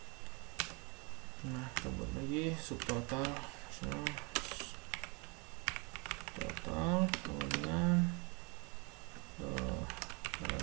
Nah, kita buat lagi subtotal total kemudian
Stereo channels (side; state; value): left; quieter; 31.3 dB